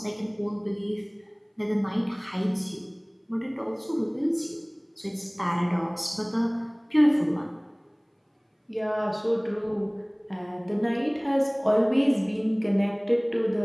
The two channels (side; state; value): both; identical; correlation 1.00